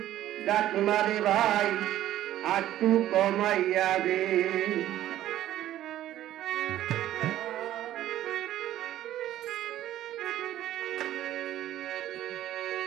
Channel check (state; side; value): quieter; left; 13.1 dB